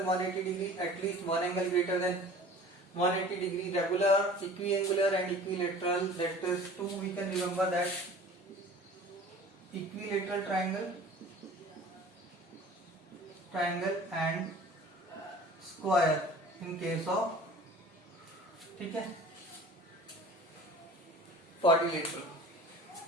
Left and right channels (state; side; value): normal; both; correlation 0.44